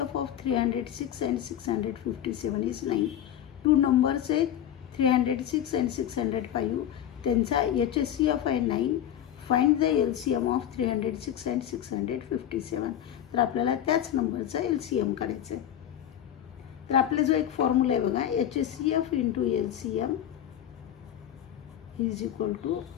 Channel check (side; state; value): right; quieter; 10.7 dB